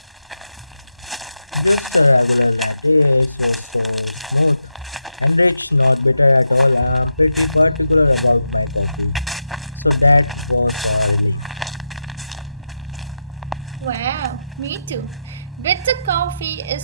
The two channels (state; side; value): inverted; both; correlation -0.87